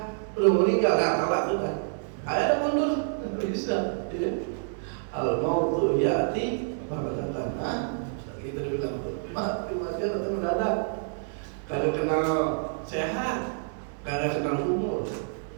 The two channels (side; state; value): left; silent; 59 dB below the other